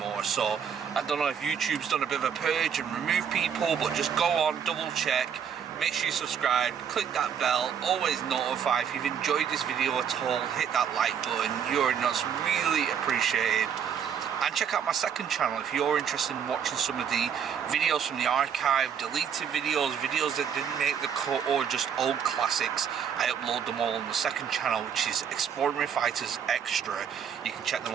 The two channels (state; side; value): quieter; left; 7.8 dB